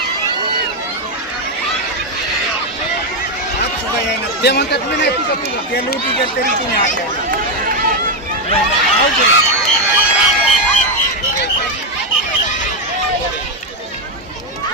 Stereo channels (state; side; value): normal; both; correlation 0.05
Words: ते म्हणतात मी नाही तुझं तुझं ते लुटी गेल तरी तुम्ही आल्या